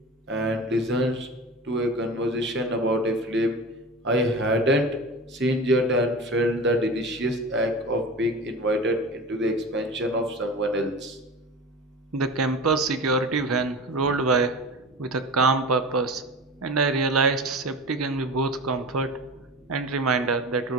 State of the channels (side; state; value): both; normal; correlation 0.32